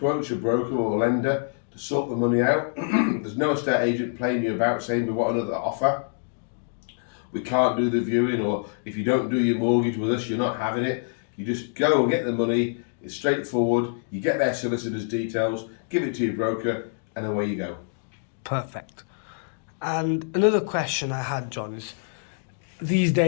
a broker or a lender to sort the money out. There's no estate agent playing you about saying we want another offer. We can't do the viewing, or if you don't do your mortgage with us, you're not having it. You just go and get the money. It's straightforward. You get their solicitor's details, give it to your broker, and away you go. Perfect. And another question I had, John, is these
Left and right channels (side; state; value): right; silent; digital silence